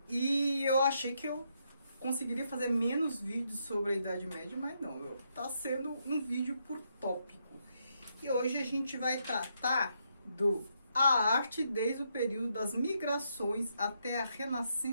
e eu achei que eu conseguiria fazer menos vídeos sobre a Idade Média, mas não, está sendo um vídeo por tópico. E hoje a gente vai tratar a arte desde o período das migrações até a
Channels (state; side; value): inverted; both; correlation -0.78